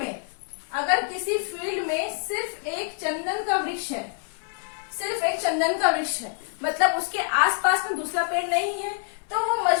फील्ड में सिर्फ एक चंदन का वृक्ष है, सिर्फ एक चंदन का वृक्ष है, मतलब उसके आसपास में दूसरा पेड़ नहीं है, तो वो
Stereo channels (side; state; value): right; silent; 61 dB below the other